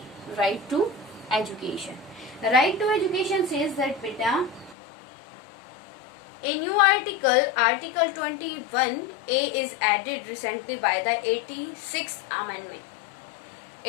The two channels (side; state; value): right; drops out; at 4.8 s